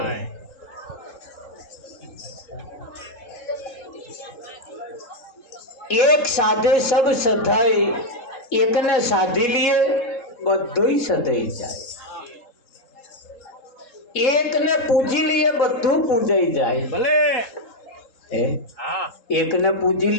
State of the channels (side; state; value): right; late; 3.7 ms